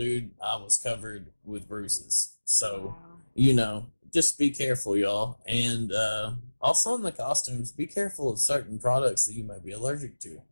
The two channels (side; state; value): both; inverted; correlation -1.00